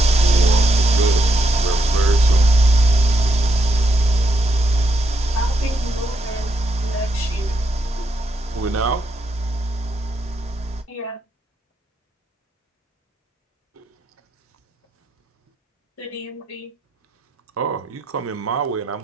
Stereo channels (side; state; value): both; normal; correlation 0.79